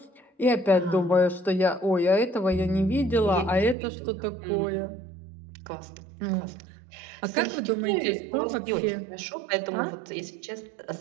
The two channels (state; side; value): drops out; left; at 3.8 s